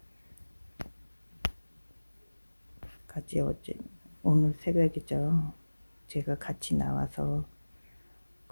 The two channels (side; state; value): both; inverted; correlation -1.00